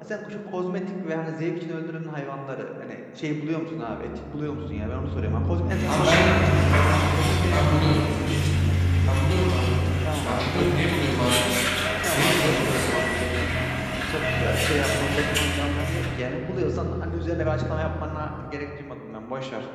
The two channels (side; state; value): both; identical; correlation 1.00